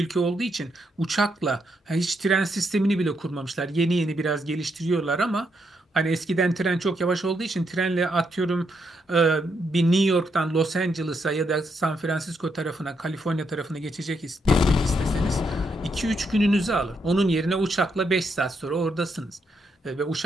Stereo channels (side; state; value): both; normal; correlation 0.78